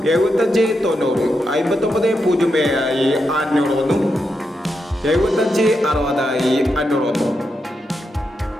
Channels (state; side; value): normal; both; correlation 0.85